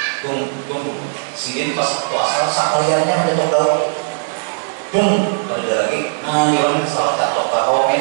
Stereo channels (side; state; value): left; silent; digital silence